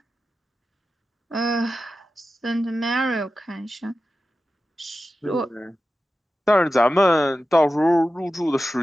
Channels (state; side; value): normal; both; correlation 0.93